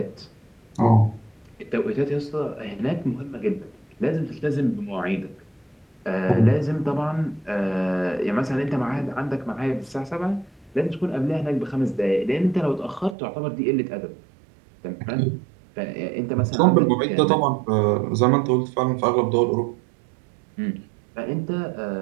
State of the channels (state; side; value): drops out; left; at 13.2 s